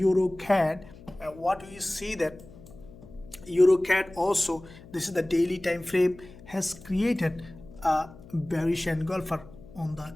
what we see that EURCAD also, this is the daily time frame, has created a bearish engulfer on the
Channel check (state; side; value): noise; left; hum, 20 dB below the sound